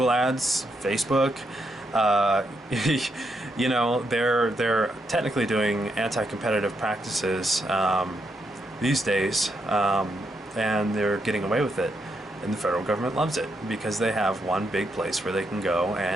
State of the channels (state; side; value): normal; both; correlation 0.80